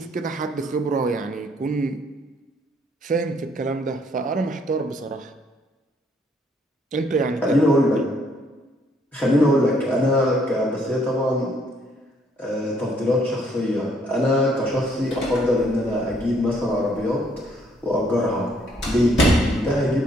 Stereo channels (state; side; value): normal; both; correlation 0.67